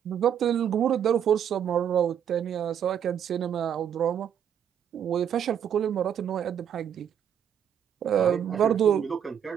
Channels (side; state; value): left; quieter; 8.8 dB